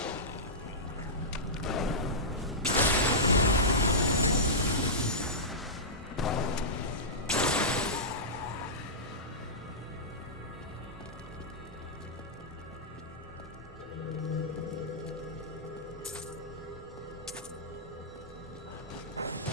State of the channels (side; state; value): both; normal; correlation -0.15